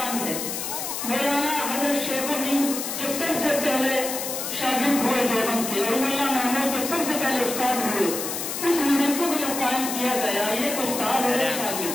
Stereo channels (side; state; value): left; noise; hiss, 4 dB below the sound